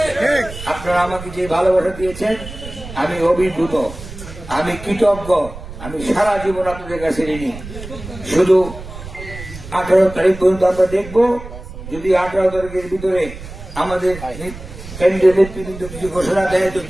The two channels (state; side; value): noise; right; rumble, 13 dB below the sound